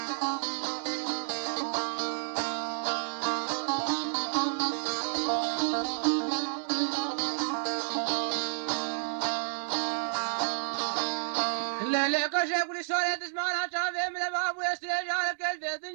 لك شيخ لسورة تسمعنا شافي من الباب ويسري جارك البيت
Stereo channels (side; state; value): left; silent; 57 dB below the other